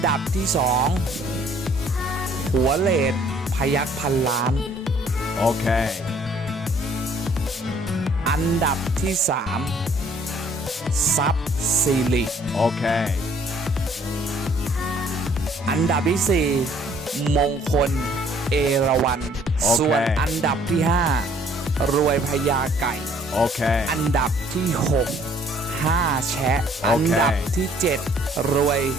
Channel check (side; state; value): both; normal; correlation 0.60